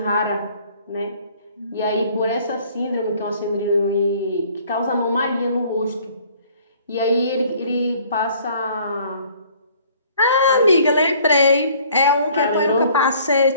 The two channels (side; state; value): both; inverted; correlation -0.57